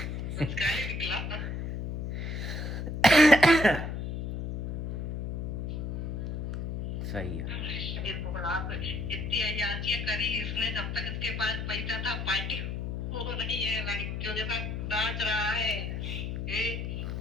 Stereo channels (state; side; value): noise; left; hum, 3 dB below the sound